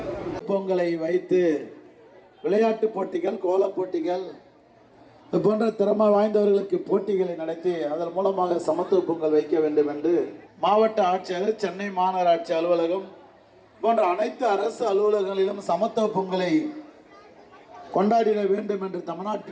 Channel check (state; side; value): identical; both; correlation 1.00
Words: பொங்கலை வைத்து விளையாட்டு போட்டிகள், கோலப் போட்டிகள் போன்ற திறமை வாய்ந்தவர்களுக்கு போட்டிகளை நடத்தி அதன் மூலமாக சமத்துவ பொங்கல் வைக்க வேண்டும் என்று மாவட்ட ஆட்சியர், சென்னை மாநகராட்சி அலுவலகம் போன்ற அனைத்து அரசு அலுவலகங்களிலும் சமத்துவ பொங்கலை கொண்டாடிட வேண்டும் என்று